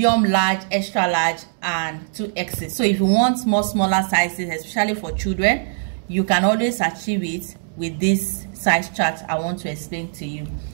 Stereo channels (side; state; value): left; silent; digital silence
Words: large, extra large, and 2Xs. So if you want more smaller sizes, especially for children, you can always achieve it with this size chart I want to explain to you.